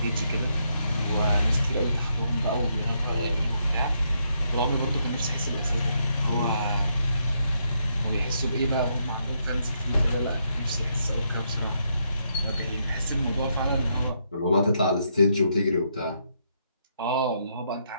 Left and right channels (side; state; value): both; inverted; correlation -0.77